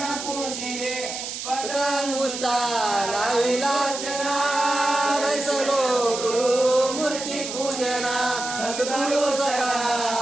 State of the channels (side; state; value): right; noise; hiss, 7 dB below the sound